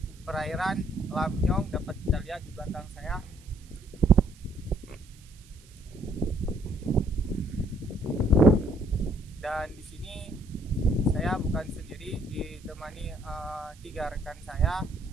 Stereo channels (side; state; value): right; noise; hiss, 26 dB below the sound